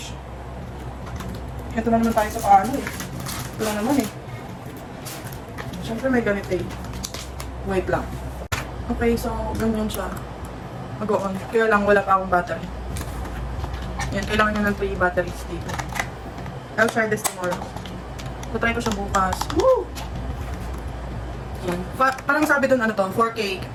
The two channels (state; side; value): identical; both; correlation 1.00